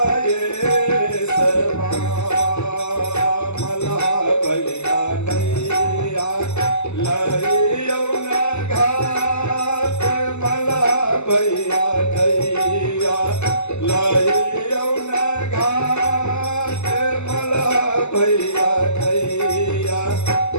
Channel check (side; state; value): right; late; 0.82 ms